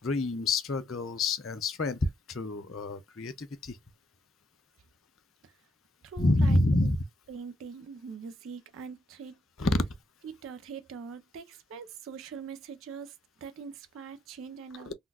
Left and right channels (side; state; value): both; normal; correlation 0.77